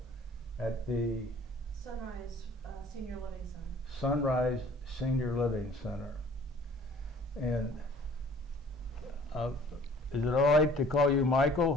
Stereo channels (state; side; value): normal; both; correlation 0.51